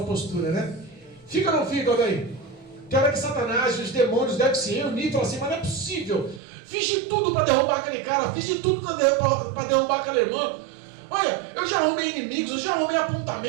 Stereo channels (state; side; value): drops out; left; at 6.4 s